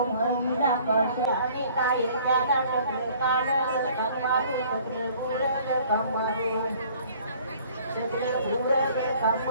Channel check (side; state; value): both; inverted; correlation -0.54